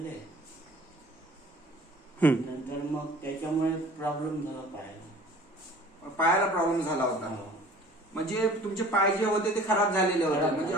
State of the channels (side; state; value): both; normal; correlation 0.47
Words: नंतर मग त्याच्यामुळे प्रॉब्लेम झाला पायाला प्रॉब्लेम झाला होता. म्हणजे तुमचे पाय जे होते ते खराब झालेले होते. म्हणजे